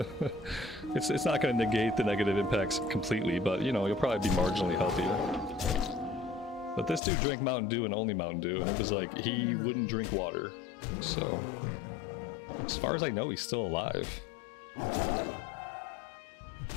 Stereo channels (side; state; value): right; drops out; at 7.0 s